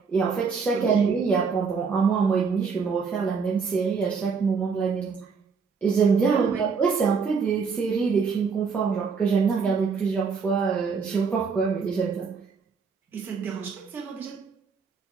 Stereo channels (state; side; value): quieter; left; 5.5 dB